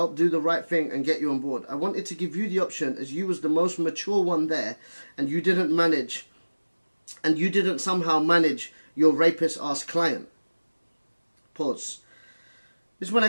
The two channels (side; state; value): both; inverted; correlation -1.00